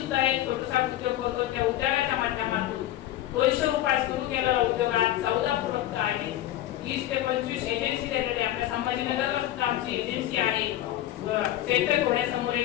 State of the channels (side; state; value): right; quieter; 13.7 dB